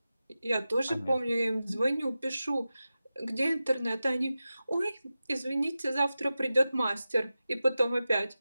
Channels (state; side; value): inverted; both; correlation -0.93